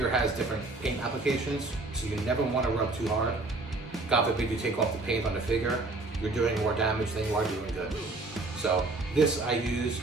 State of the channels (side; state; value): left; quieter; 3.2 dB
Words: has different paint applications, so you never want to rub too hard. God forbid you take off the paint on the figure, you're doing more damage than you are doing good. So this I use